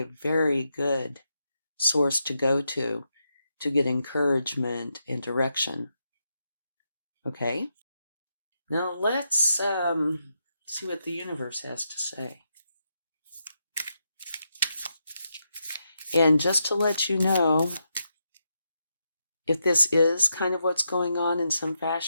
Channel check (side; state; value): both; inverted; correlation -0.84